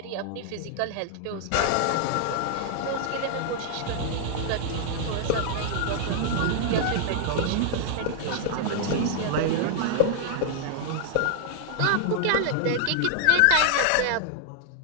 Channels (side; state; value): both; different; correlation 0.00